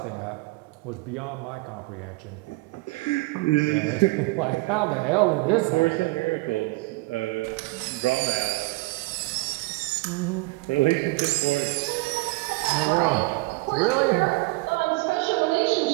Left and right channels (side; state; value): left; quieter; 24.3 dB